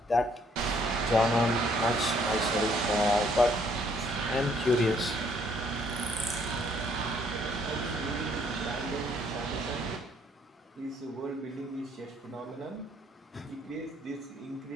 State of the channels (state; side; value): normal; both; correlation 0.65